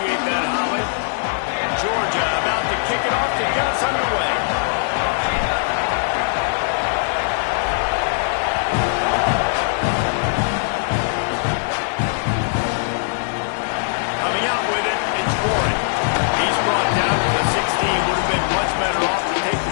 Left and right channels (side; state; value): right; silent; digital silence